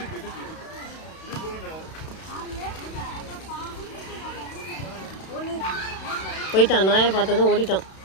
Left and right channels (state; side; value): late; right; 32 ms